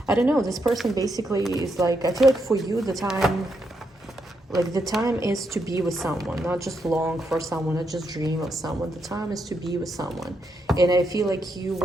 I don't know, this person basically is like, I feel like for you the time, like the time is to be with someone, not just long for someone, not just dream of someone. The time is to be with someone. And I feel like you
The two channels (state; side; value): normal; both; correlation 0.80